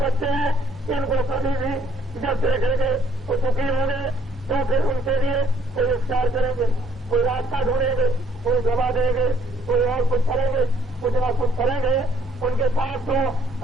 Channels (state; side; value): normal; both; correlation 0.63